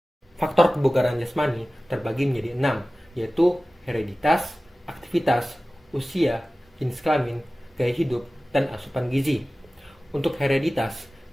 Faktor kebugaran jasmani terbagi menjadi 6, yaitu hereditas, aktivitas, usia, jenis kelamin, gaya hidup, dan asupan gizi. Untuk hereditas,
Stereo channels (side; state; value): both; normal; correlation 0.96